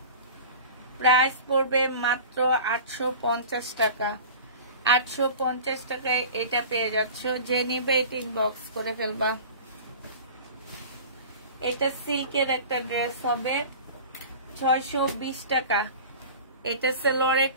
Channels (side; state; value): both; inverted; correlation -0.38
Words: প্রাইস পড়বে মাত্র 850 টাকা। 850 টাকায় এটা পেয়ে যাচ্ছ। যে নিবে এটা ইনবক্স করে ফেলবা। এটা সিল্কের একটা ড্রেস হবে 620 টাকা। এটা সালোয়ারের